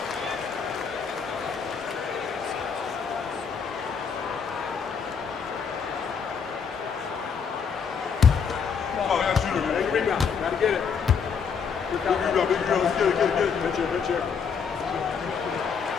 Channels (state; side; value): quieter; right; 6.3 dB